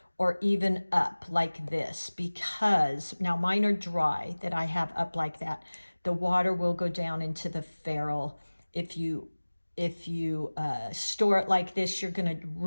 or even up like this, because now mine are dry that I have up like that. The water will go down into the ferrule. If you store it like this, you're going to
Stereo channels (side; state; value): both; inverted; correlation -1.00